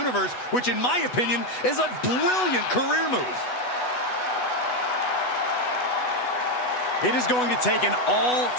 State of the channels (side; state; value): right; late; 8.1 ms